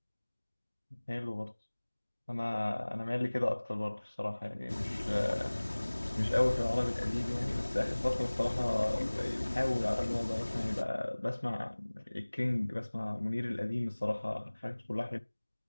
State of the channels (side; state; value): both; inverted; correlation -1.00